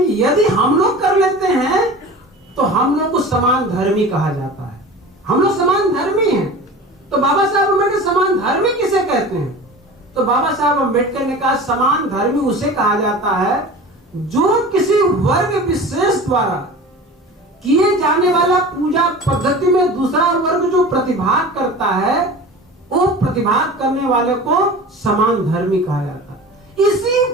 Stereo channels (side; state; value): both; normal; correlation 0.36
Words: कि यदि हम लोग कर लेते हैं तो हम लोग को समान धर्मी कहा जाता है। हम लोग समान धर्मी हैं। तो बाबा साहब अम्बेडकर समान धर्मी किसे कहते हैं? तो बाबा साहब अम्बेडकर ने कहा समान धर्मी उसे कहा जाता है जो किसी वर्ग विशेष द्वारा किए जाने वाला पूजा पद्धति में दूसरा वर्ग जो प्रतिभाग करता है, वो प्रतिभाग करने वाले को समान धर्मी कहा जाता है। इसी